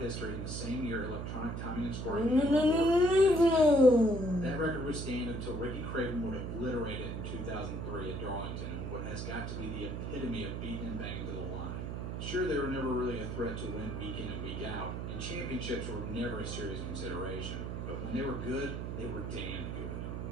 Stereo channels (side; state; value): right; noise; hum, 4 dB below the sound